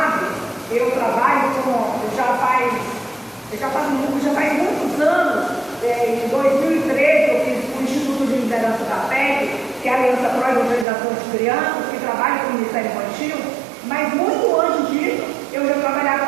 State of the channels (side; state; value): left; drops out; at 10.9 s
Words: eu trabalho já faz muitos anos. Em 2013 eu fiz o Instituto de Liderança da PEC, que é a Aliança Pro Evangelização de Crianças, que trabalha com o Ministério Infantil, mas muito antes disso eu já trabalhava